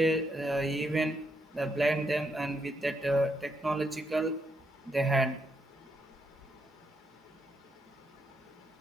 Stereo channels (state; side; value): normal; both; correlation 0.78